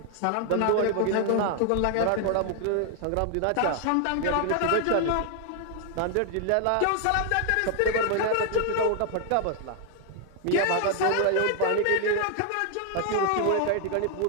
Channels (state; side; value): different; both; correlation 0.00